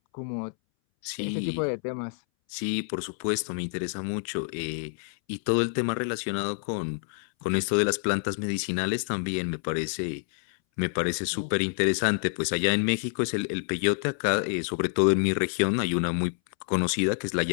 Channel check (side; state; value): right; silent; 60 dB below the other